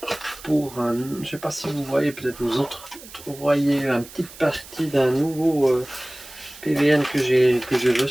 je ne sais pas si vous voyez, peut-être vous autres voyez une petite partie d'un nouveau PVN que j'ai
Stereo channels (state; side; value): noise; right; hiss, 18 dB below the sound